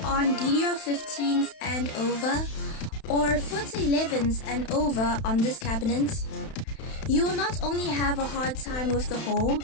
DDR15s and over, or FUTA 11s and over on this cabinet, you will not only have a hard time with the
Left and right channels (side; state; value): right; late; 31 ms